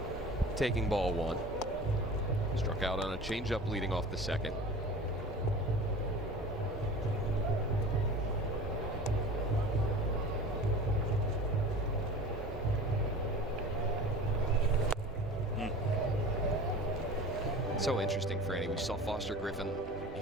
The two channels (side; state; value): both; normal; correlation 0.39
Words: taking ball one. Struck out on a changeup leading off the second. So interesting, Franny. We saw Foster Griffin